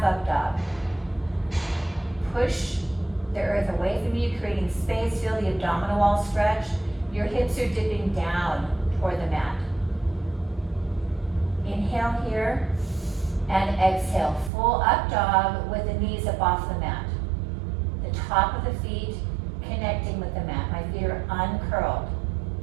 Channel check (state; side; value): drops out; left; at 14.5 s